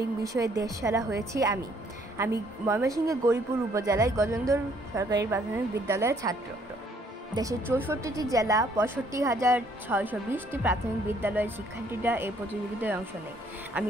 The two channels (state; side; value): normal; both; correlation 0.64